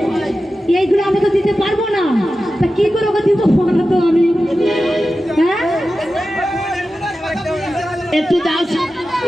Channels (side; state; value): both; normal; correlation 0.93